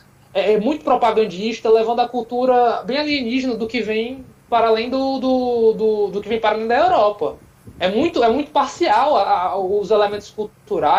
muito propagandista, levando a cultura bem alienígena do que vem para além do que vem para além da Europa. É muito parcial os elementos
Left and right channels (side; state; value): both; identical; correlation 1.00